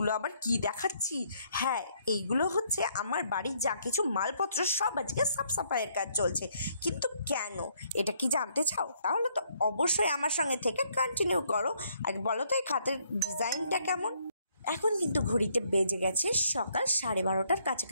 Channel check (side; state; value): both; inverted; correlation -0.69